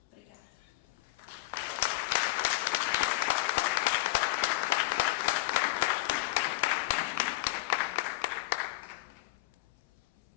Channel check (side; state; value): right; quieter; 19.8 dB